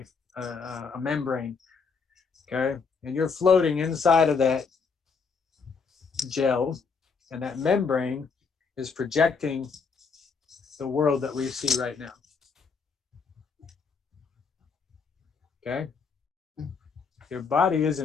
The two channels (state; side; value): quieter; right; 5.2 dB